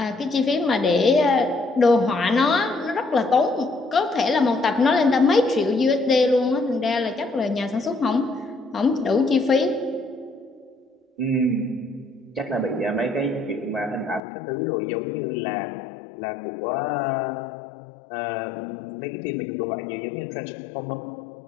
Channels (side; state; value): right; drops out; at 14.2 s